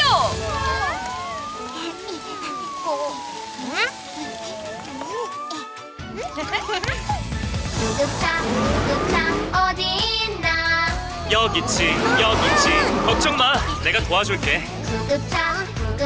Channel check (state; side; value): identical; both; correlation 1.00